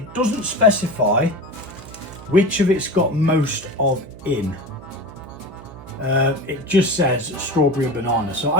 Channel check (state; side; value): noise; right; hum, 17 dB below the sound